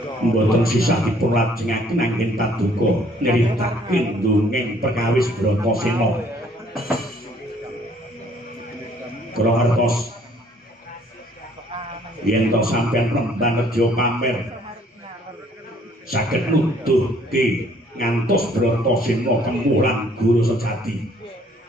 mboten sisah dipun lajengaken anggen paduka nyritakaken dongeng perkawis Bratasena kula ngertos yen to sampeyan penemban reja pamer saged nuduhke ngantos Bratasena kemulan guru sejati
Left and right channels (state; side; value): normal; both; correlation 0.61